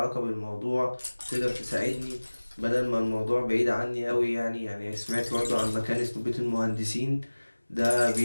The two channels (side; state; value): both; inverted; correlation -1.00